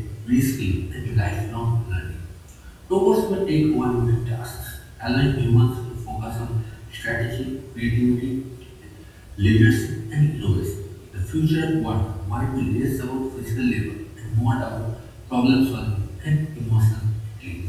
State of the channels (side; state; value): both; identical; correlation 1.00